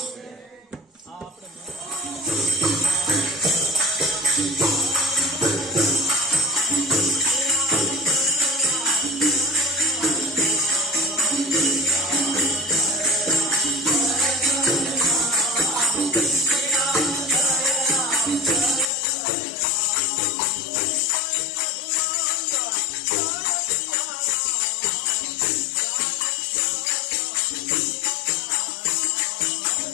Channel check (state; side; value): drops out; right; at 18.9 s